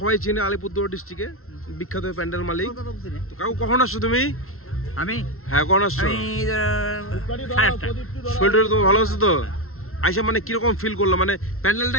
চিনে, আলিপুরদুয়ার ডিস্ট্রিক্টে বিখ্যাত প্যান্ডেল মালিক। তো কাকু কখন আসছো তুমি? আমি হ্যাঁ কখন আসছো? শরীরটা তো ভালো আছে তো? আইসা মানে কিরকম ফিল করলো, মানে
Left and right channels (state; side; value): late; right; 0.62 ms